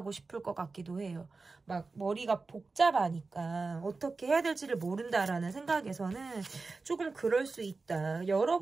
싶을 것 같기도 해요. 막 머리가 복잡하니까 어떻게 해야 될지를 모른다라는 생각에서는 조금 그럴 수 있다.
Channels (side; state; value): left; quieter; 3.9 dB